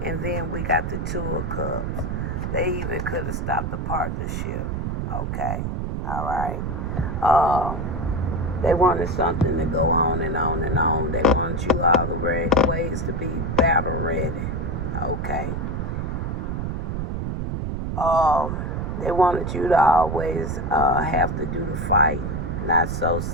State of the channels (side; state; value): right; noise; rumble, 2 dB below the sound